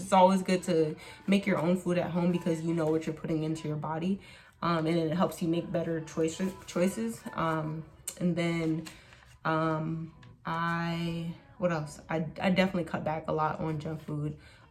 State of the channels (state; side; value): identical; both; correlation 1.00